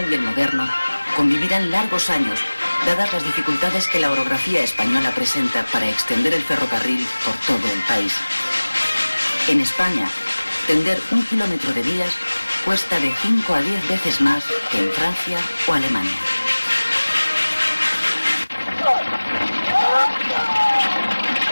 y el moderno, convivirán largos años, dadas las dificultades que la orografía española presenta para extender el ferrocarril por todo el país. En España, tender 1 kilómetro de vías cuesta de 5 a 10 veces más que en Francia o Alemania.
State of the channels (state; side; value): inverted; both; correlation -1.00